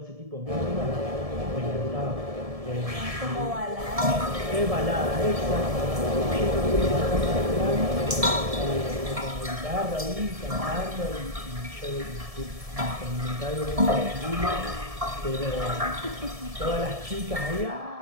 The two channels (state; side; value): late; left; 1.7 ms